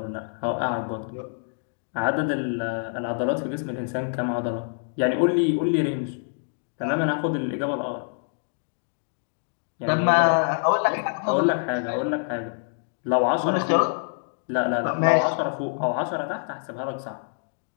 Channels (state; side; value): silent; right; digital silence